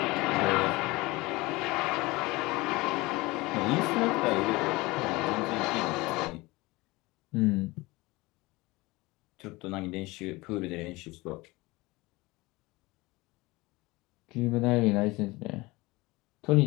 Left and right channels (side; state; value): right; quieter; 22.1 dB